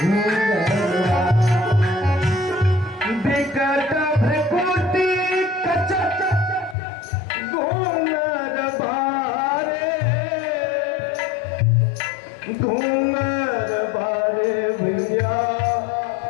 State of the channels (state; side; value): drops out; right; at 6.8 s